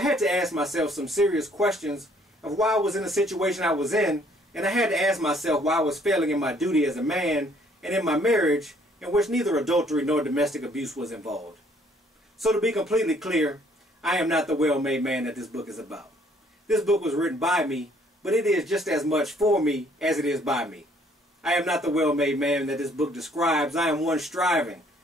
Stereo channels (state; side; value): normal; both; correlation 0.62